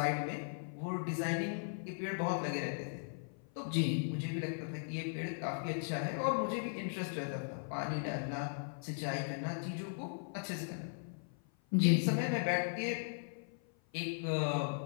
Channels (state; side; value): silent; right; 53 dB below the other